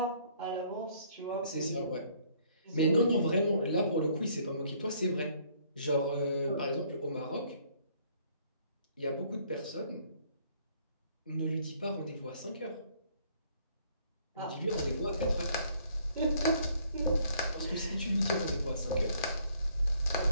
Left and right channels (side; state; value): both; inverted; correlation -0.64